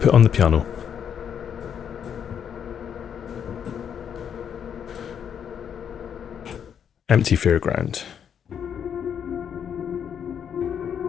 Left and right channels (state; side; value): quieter; right; 8.2 dB